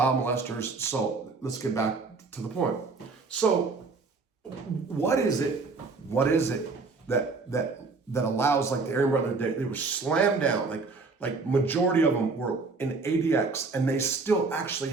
molesters. So let's get back to the point. So what is it that allows, like the Aryan Brotherhood, they were slammed down, like majority of them were in ADX, and they still actually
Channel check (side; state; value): left; quieter; 4.2 dB